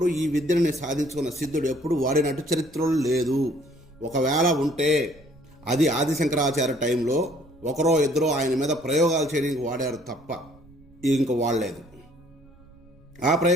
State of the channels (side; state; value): right; noise; rumble, 26 dB below the sound